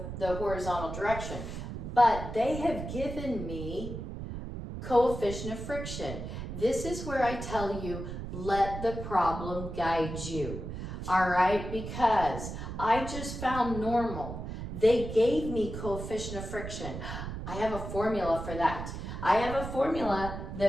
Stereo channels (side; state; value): right; noise; rumble, 7 dB below the sound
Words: the horizontal direction. But they have given me coefficient of friction. This is where I tell you, let the problem guide you. All right, because I just found normal. They gave me coefficient of friction. I have a formula for that. I have a formula